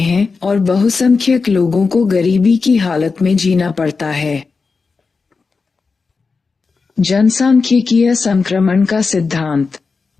और बहुसंख्यक लोगों को गरीबी की हालत में जीना पड़ता है। जनसांख्यिकीय संक्रमण का सिद्धांत।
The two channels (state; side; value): quieter; right; 4.6 dB